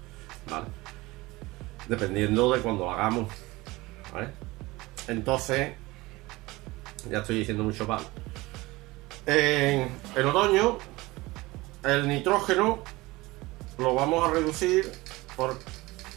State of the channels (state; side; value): quieter; left; 20.9 dB